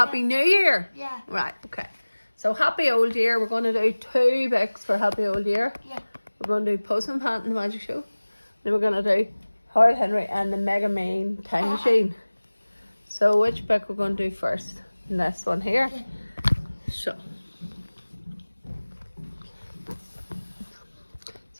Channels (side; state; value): both; inverted; correlation -1.00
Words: New Year. Yeah. Right, okay. So happy old year. We're going to do 2 books for happy old year. Yeah. We're going to do Postman Pat and the Magic Show. Then we're going to do Horrid Henry and the Mega Mean Time Machine. So which book we're going to do first? And this one here. Yeah.